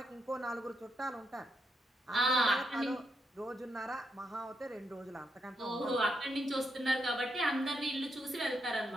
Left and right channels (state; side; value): normal; both; correlation 0.80